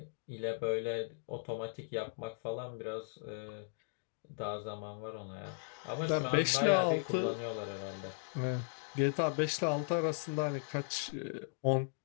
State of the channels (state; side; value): silent; right; digital silence